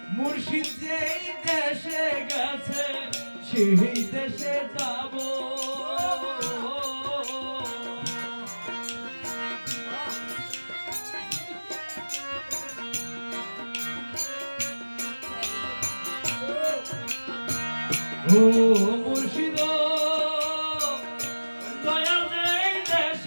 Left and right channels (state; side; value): inverted; both; correlation -1.00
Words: মুর্শিদ যেই দেশে গেছে সেই দেশে যাব ও মুর্শিদ দয়াল যেই